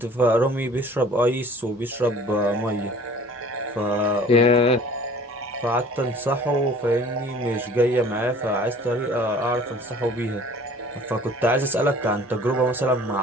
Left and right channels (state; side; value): normal; both; correlation 0.49